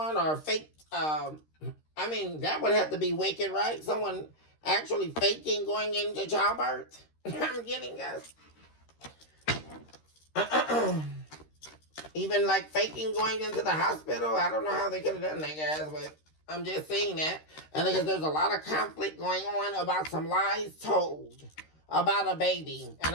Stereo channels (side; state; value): right; late; 13 ms